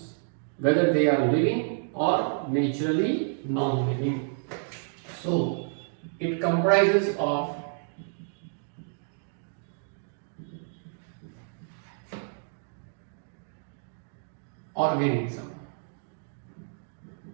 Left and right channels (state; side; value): silent; left; digital silence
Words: whether they are living or naturally non-living. So it comprises of organism.